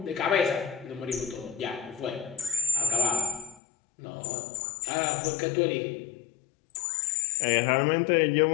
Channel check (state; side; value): drops out; right; at 3.6 s